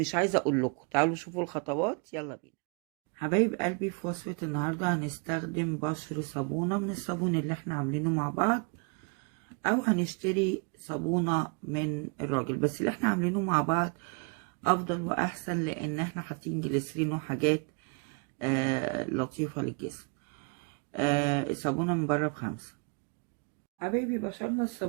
عايزة اقول لكم. تعالوا شوفوا الخطوات، يلا بينا حبايب قلبي. في وصفة النهاردة هنستخدم بشر صابونة من الصابون اللي احنا عاملينه مع بعض، او هنشتري صابونة من الراجل، بس اللي احنا عاملينه مع بعض افضل واحسن، لان احنا حاطين جليسرين وحاجات لطيفة للجسم. الصابونة من بره ب5. حبايبي بشرنا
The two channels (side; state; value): left; quieter; 35.4 dB